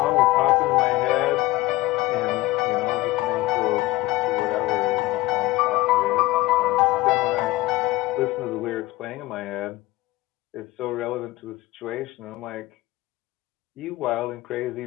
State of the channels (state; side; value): quieter; right; 18.7 dB